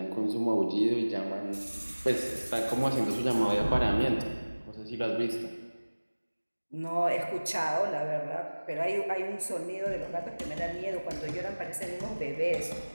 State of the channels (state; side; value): inverted; both; correlation -1.00